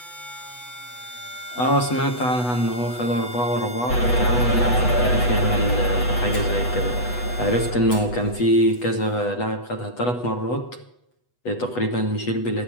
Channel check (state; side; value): late; right; 8.1 ms